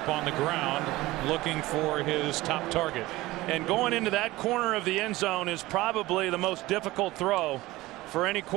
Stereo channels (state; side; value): quieter; left; 18.7 dB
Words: on the ground looking for his top target. And going into that corner of the end zone is probably the most difficult throw for any